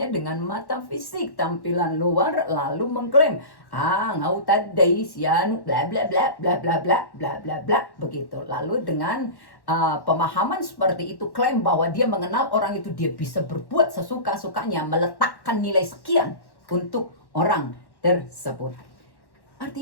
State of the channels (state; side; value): late; right; 1.1 ms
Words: dengan mata fisik, tampilan luar, lalu mengklaim, ngau tadai sian bla bla bla bla bla bla bla bla bla begitu. Lalu dengan pemahaman seperti itu, klaim bahwa dia mengenal orang itu, dia bisa berbuat sesuka-sukanya, meletakkan nilai sekian untuk orang tersebut.